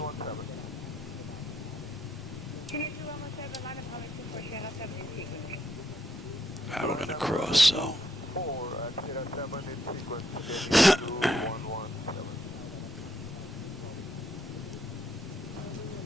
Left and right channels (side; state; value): both; normal; correlation 0.74